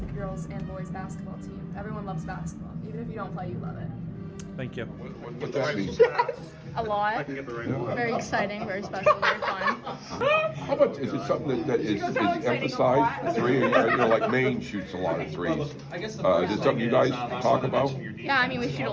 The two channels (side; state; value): both; identical; correlation 1.00